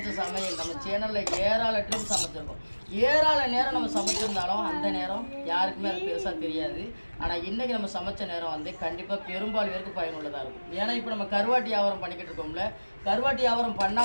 சமையல் நம்ம சேனலில் ஏராள ட்ரிப் சமைச்சிருக்கோம். ஏராள நேரம் நம்ம சமைச்சிருந்தாலும் அந்த நேரம் யாருக்குமே அது பெருசாக தெரியாது. ஆனால் இன்னைக்கு நம்ம சமைச்ச நேரம் வந்து கண்டிப்பாக பெரும்பாலும் பேருக்கு பயனுள்ளதாக இருக்கும். ஏன்னா இப்போ நம்ம கருவாட்டி வியாபாரம் பண்ணிக்கிட்டு இருக்கோம்ல, கருவாட்டி வியாபாரம்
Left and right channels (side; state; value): both; inverted; correlation -1.00